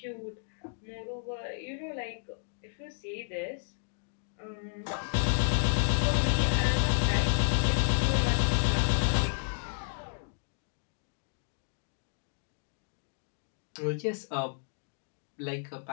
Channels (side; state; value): right; silent; digital silence